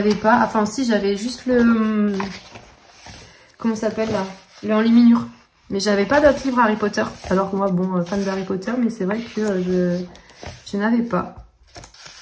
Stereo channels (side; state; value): both; identical; correlation 1.00